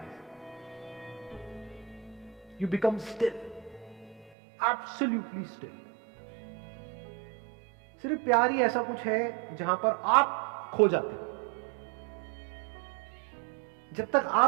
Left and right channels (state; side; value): drops out; left; at 4.3 s